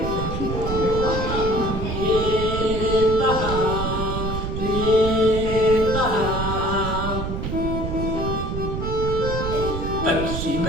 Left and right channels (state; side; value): noise; right; rumble, 3 dB below the sound